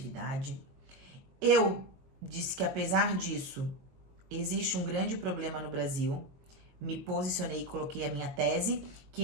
Eu disse que, apesar disso, existe um grande problema no Brasil. Me posicionei e coloquei a minha tese,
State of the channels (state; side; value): late; left; 22 ms